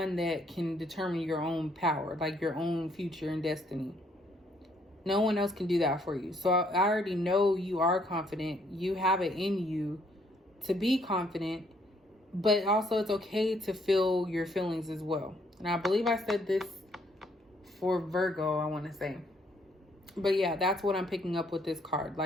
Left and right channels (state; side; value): normal; both; correlation 0.68